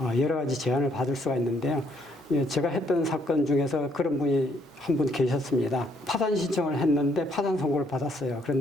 여러 가지 제한을 받을 수가 있는데요. 예, 제가 했던 사건 중에서 그런 분이 한 분 계셨습니다. 파산 신청을 했는데 파산 선고를 받았어요.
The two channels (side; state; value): both; normal; correlation 0.69